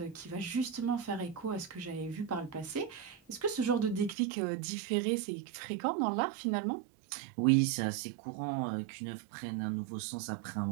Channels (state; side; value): drops out; left; at 4.2 s